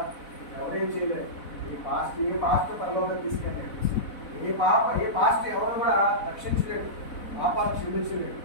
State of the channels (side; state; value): right; late; 4.0 ms